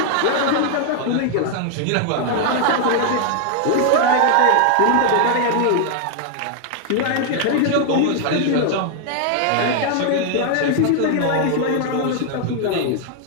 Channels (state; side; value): different; both; correlation 0.00